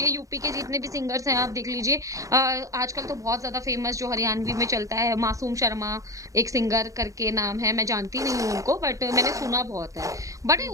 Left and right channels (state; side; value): late; left; 0.16 ms